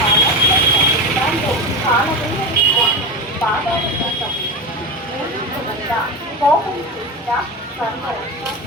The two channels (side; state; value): both; normal; correlation 0.21